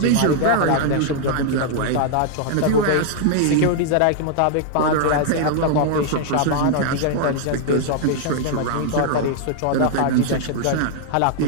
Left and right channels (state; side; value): different; both; correlation 0.00